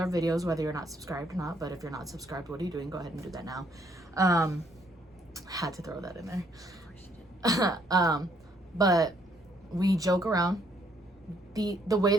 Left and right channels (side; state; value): both; normal; correlation 0.68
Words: videos, whether you're not subscribed or not, but if you're not subscribed, what are you doing? Go ahead and do that now. Had to throw that in there. But we joke around. The way